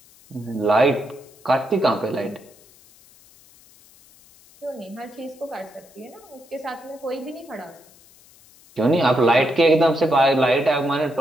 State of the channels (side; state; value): left; noise; hiss, 27 dB below the sound